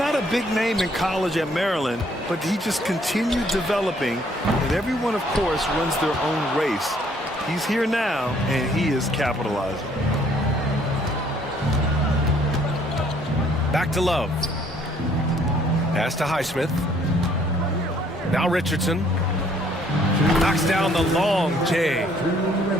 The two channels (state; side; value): normal; both; correlation 0.63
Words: a big name in college at Maryland, but he just continued developing. And everyone, of course, runs their own race. He's here now, and he is capitalizing. Back to Love. Pass to Highsmith. Now Richardson. Knocks down the long J.